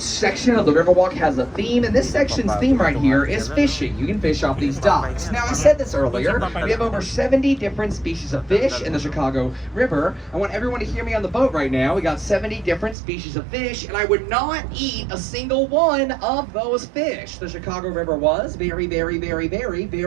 section of the Riverwalk has a theme, and this section's theme right here is fishing. You can fish off these docks. Now, I said this earlier, we have over 70 different species of fish in the Chicago River. I want everyone to hear me on the boat right now. We got 70 different species of fish, and I would not eat a single one of those fish. The Chicago River was very, very, very, very,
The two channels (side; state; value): left; drops out; at 13.0 s